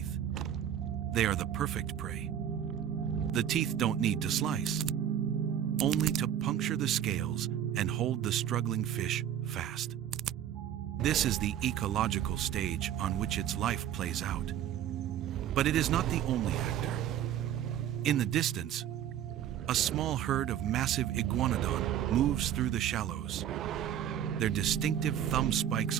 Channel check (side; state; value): left; quieter; 10.3 dB